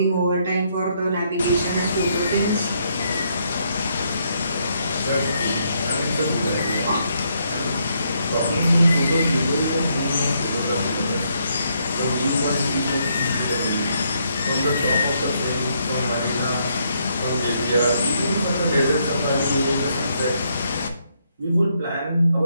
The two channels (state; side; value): inverted; both; correlation -0.74